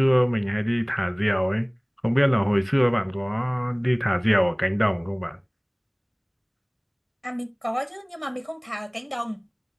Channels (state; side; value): identical; both; correlation 1.00